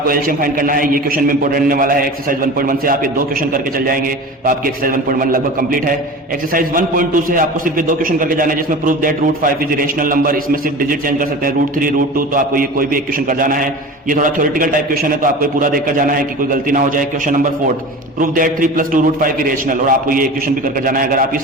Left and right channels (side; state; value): both; normal; correlation 0.34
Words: एलसीएम फाइंड करना है। ये क्वेश्चन में इंपॉर्टेंट रहने वाला है। एक्सरसाइज 1.1 से आप ये दो क्वेश्चन करके चल जाएंगे तो आपकी एक्सरसाइज 1.1 लगभग कंप्लीट है। एक्सरसाइज 1.2 से आपको सिर्फ ये दो क्वेश्चन करके जाना है, जिसमें prove that √5 is rational number. इसमें सिर्फ डिजिट चेंज कर सकते हैं, √3 √2, तो आपको ये कोई भी एक क्वेश्चन कर जाना है। ये थोड़ा थ्योरेटिकल टाइप क्वेश्चन है तो आपको पूरा देखकर जाना है कि कोई गलती ना हो जाए। Question number 4, prove that 3 + 2 √5 irrational, और आपको ये क्वेश्चन भी करके जाना है। अगर आप ये